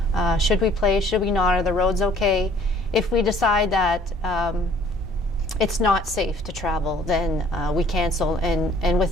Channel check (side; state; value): both; normal; correlation 0.55